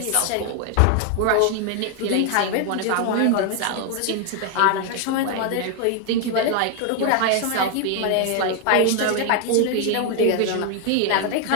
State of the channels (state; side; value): different; both; correlation 0.00